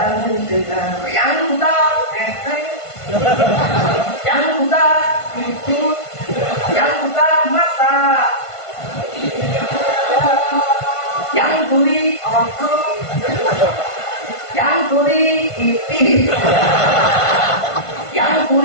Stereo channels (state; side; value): late; right; 1.5 ms